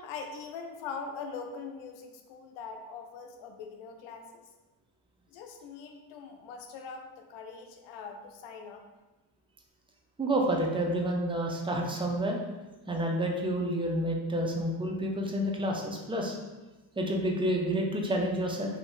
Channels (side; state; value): both; normal; correlation 0.38